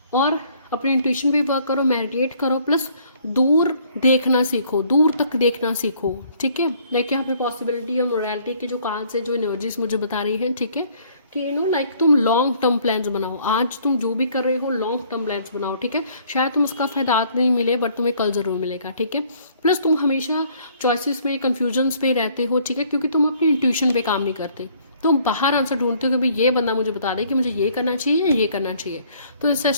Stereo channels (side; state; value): both; inverted; correlation -0.61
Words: और अपने इंट्यूशन पे वर्क करो, मेडिटेट करो, प्लस दूर देखना सीखो, दूर तक देखना सीखो, ठीक है। लाइक यहाँ पे पॉसिबिलिटी और मोरालिटी के जो कार्ड्स है, जो एनर्जीज मुझे बता रही हैं, ठीक है, कि लाइक तुम लॉन्ग टर्म प्लान्स बनाओ, आज तुम जो भी कर रहे हो लॉन्ग टर्म प्लान्स बनाओ, ठीक है। शायद तुम उसका फायदा आज नहीं मिले बट तुम्हें कल जरूर मिलेगा, ठीक है। प्लस तुम हमेशा चॉइसेस में कंफ्यूजन्स पे रहते हो, ठीक है, क्योंकि तुम अपनी इंट्यूशन पे काम नहीं करते, तुम बाहर आंसर ढूंढते हो कि भाई ये बंदा मुझे बता दे कि मुझे ये करना चाहिए या ये करना चाहिए। तो